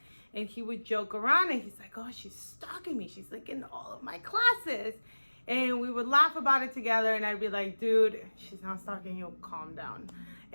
and he would joke around, and he's like, oh, she's stalking me, she's like in all of my classes. And we would laugh about it together, and I'd be like, dude, she's not stalking you, calm down.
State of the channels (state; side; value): inverted; both; correlation -1.00